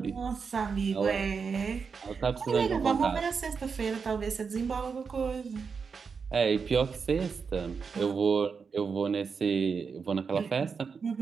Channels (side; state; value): left; quieter; 5.6 dB